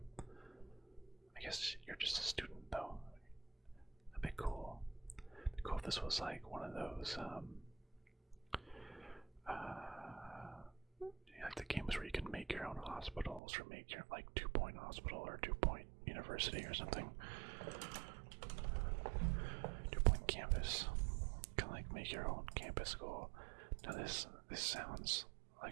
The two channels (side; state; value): left; drops out; at 13.4 s